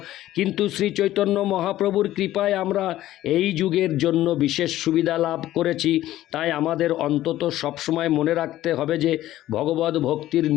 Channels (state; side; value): quieter; right; 14.3 dB